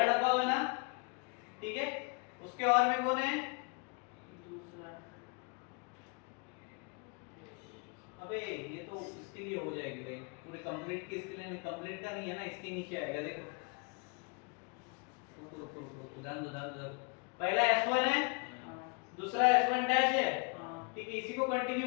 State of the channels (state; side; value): quieter; right; 33.5 dB